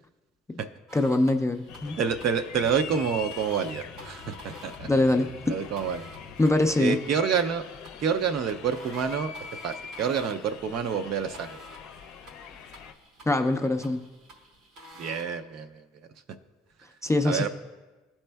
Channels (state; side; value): normal; both; correlation 0.55